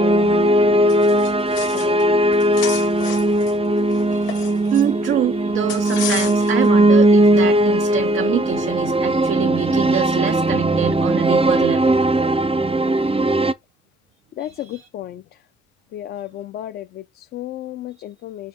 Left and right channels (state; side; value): normal; both; correlation 0.62